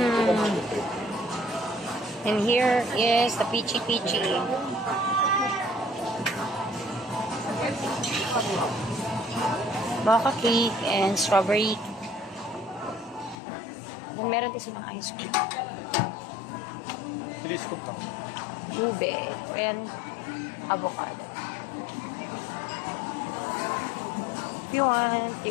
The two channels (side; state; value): right; drops out; at 13.4 s